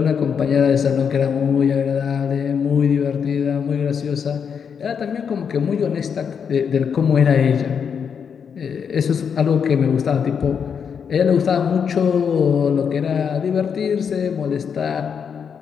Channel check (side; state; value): right; quieter; 6.9 dB